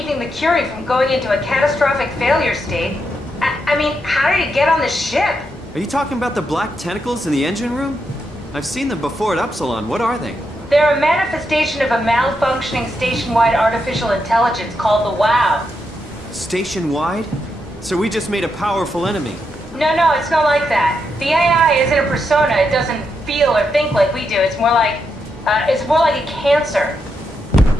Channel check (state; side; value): normal; both; correlation 0.83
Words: the Curie from going into a catastrophic failure state. I mean, how did it get on the ship? Are you talking about the black tentacles in the engine room? I've seen them before at Upsilon. What are they? They're a manifestation of a malfunctioning station-wide artificial intelligence called the WOW. Station-wide? So we just made a powerful enemy. No, it's not like that. The AI isn't a persona. It doesn't feel or think like we do. It's more like a cancer.